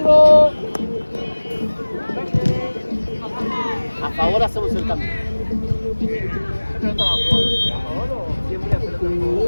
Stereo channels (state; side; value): inverted; both; correlation -1.00